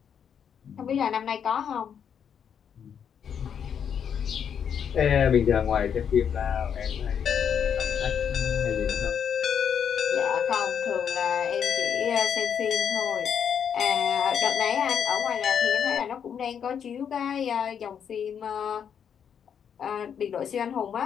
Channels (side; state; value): right; quieter; 7.9 dB